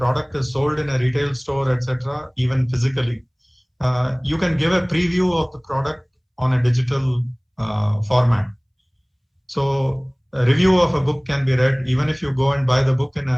is sold in a retail store, etc., even physically, you can give a preview of the product on a digital format. So a review of a book can be read even if you go and buy the book in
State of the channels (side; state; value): both; identical; correlation 1.00